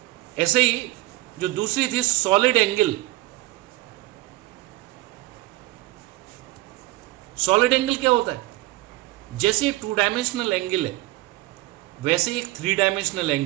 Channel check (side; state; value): left; quieter; 19.2 dB